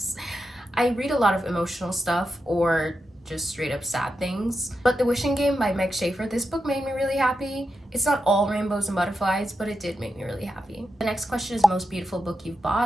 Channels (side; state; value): both; normal; correlation 0.87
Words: I read a lot of emotional stuff or just straight up sad things. But The Wishing Game by Meg Schaefer, this book made me really happy. It's not all rainbows and butterflies, but it did make me really happy. The next question is most beautiful book you've